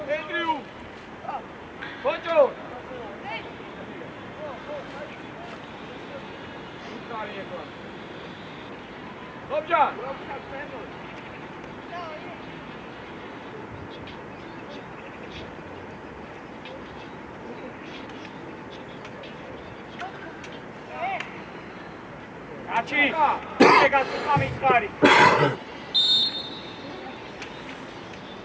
ენდრიუ. ბოჭო. ლობჯან. კაცი, ეგაც გამიწყარი.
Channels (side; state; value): both; identical; correlation 1.00